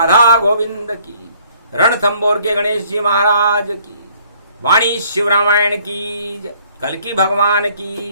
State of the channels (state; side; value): inverted; both; correlation -0.60